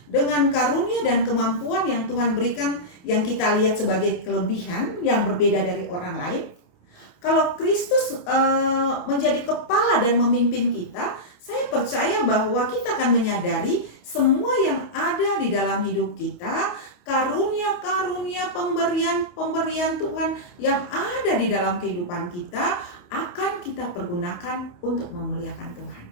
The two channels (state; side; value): late; right; 28 ms